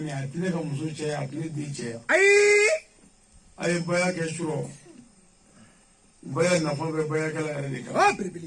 a tɛ ne ka muso cɛya a tɛ ne den cɛya a ye baya kɛ surɔ baya nafa bɛ bayakɛla yɛrɛ de kan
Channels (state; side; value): identical; both; correlation 1.00